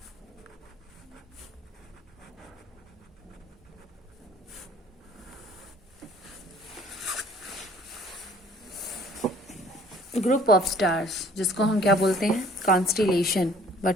Group of stars, जिसको हम क्या बोलते हैं? Constellation.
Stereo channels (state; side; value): normal; both; correlation 0.55